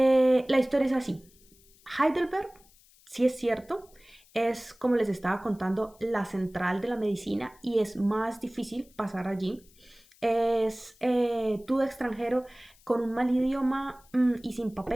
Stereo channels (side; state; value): left; noise; hiss, 28 dB below the sound